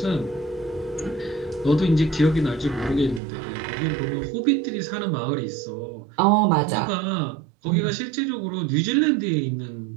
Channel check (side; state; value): left; drops out; at 3.2 s